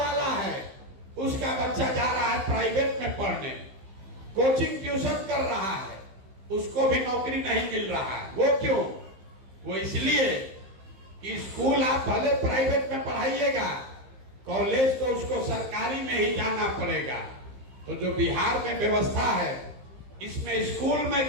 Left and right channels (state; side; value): late; left; 15 ms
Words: है उसका बच्चा जा रहा है प्राइवेट में पढ़ने, कोचिंग ट्यूशन कर रहा है, उसको भी नौकरी नहीं मिल रहा है। वो क्यों? वो इसलिए कि स्कूल आप भले प्राइवेट में पढ़ाइएगा, कॉलेज तो उसको सरकारी में ही जाना पड़ेगा। तो जो बिहार में व्यवस्था है, इसमें स्कूल में